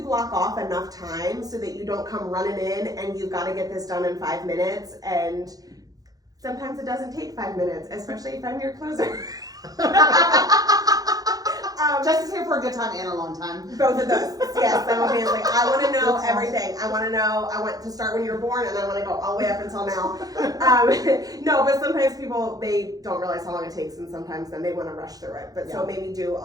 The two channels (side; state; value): left; late; 0.18 ms